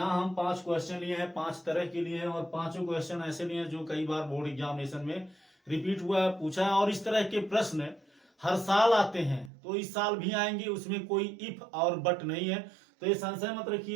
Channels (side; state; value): left; drops out; at 9.5 s